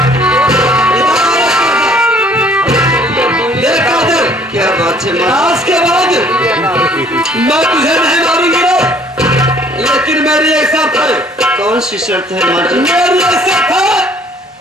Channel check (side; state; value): both; normal; correlation 0.58